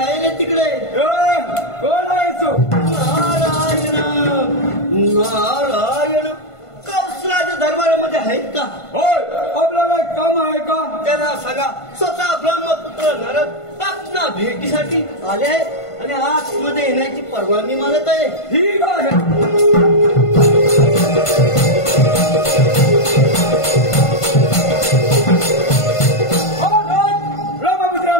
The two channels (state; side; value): late; right; 1.5 ms